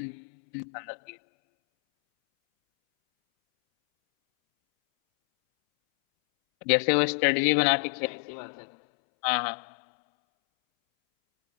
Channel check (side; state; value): right; silent; 60 dB below the other